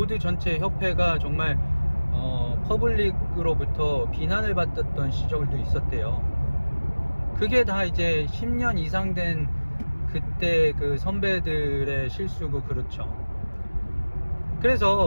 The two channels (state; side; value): inverted; both; correlation -1.00